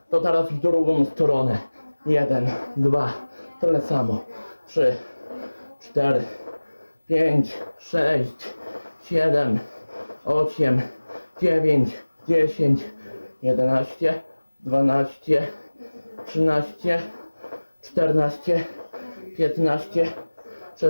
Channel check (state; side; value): inverted; both; correlation -1.00